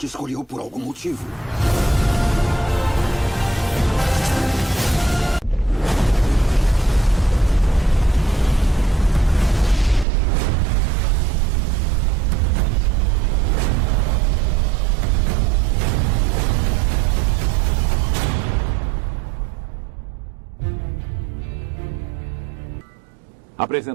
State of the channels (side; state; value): left; drops out; at 10.1 s